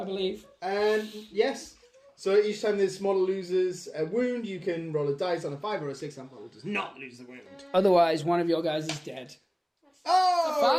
believe. And yes. So each time this model loses a wound, you can roll a dice on a 5 or a 6. That model does not lose the wound. Otherwise, one of your guys is dead. Oh!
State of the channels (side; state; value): both; identical; correlation 1.00